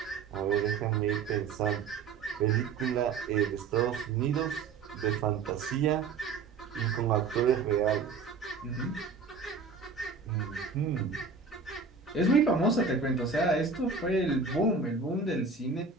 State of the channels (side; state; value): left; quieter; 5.0 dB